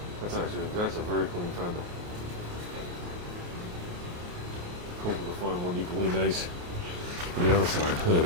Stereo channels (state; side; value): late; left; 28 ms